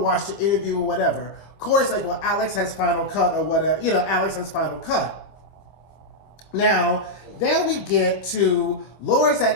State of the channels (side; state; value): right; late; 25 ms